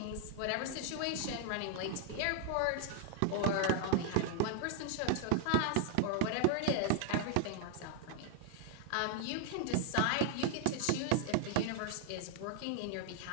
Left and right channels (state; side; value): different; both; correlation 0.00